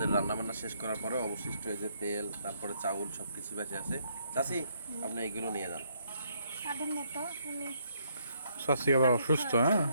রান্নাবান্না শেষ করার পরে অবশিষ্ট এই যে তেল, তারপরে চাউল সব কিছু বেঁচে আছে। চাচি, আপনি এগুলো নিয়ে যান। সাধন মতো আমি শাশি আবার অসুস্থ, হ্যাঁ?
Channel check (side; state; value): both; inverted; correlation -0.72